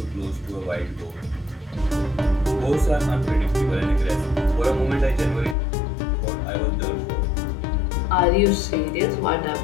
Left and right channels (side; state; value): right; drops out; at 5.6 s